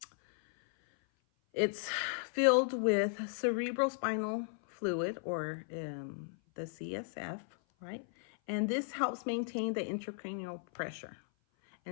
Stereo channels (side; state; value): right; silent; 54 dB below the other